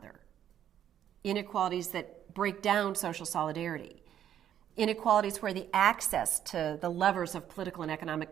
Inequalities that break down social solidarity. Inequalities where the access to the levers of political and economic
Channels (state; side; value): quieter; left; 10.4 dB